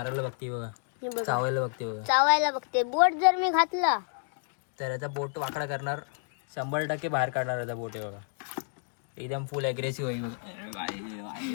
बघते बघा, हे बघा, चावायला बघते बघा. चावायला बघते. बोट जर मी घातला तर याचा बोट वाकडा करणार, 100% बाहेर काढणार याचा बोट. आहे बघा, एकदम फुल ॲग्रेसिव्ह आहे बघा.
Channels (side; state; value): right; silent; 58 dB below the other